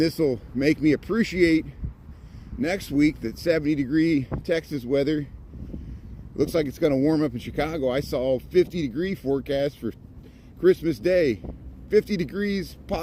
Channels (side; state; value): both; identical; correlation 1.00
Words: will make me appreciate next week the 70-degree Texas weather. Looks like it's going to warm up in Chicago. I saw a 50-degree forecast for Christmas Day. 50 degrees